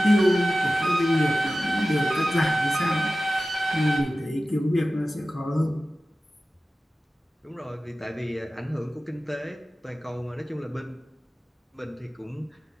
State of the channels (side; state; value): both; normal; correlation 0.95